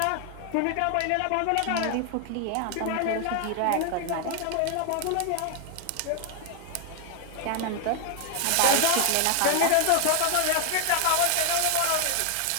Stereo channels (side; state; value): both; different; correlation 0.00